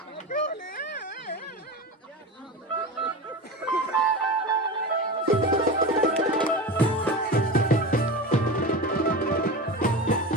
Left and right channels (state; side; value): normal; both; correlation 0.26